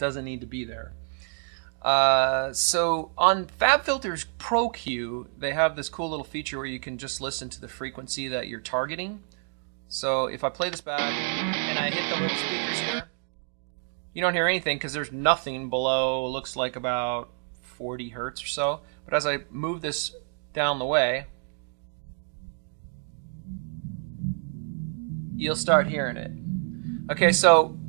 need to be there. So on FabFilter's Pro Q, they have this cool little feature where you can just listen to the frequency that you're targeting. So if I play this back and I hit the little speakers here, you don't hear anything because there's nothing below, looks like about 40 hertz or so. But as I move this down the way, you'll start hearing it. Okay, so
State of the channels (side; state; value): left; silent; 58 dB below the other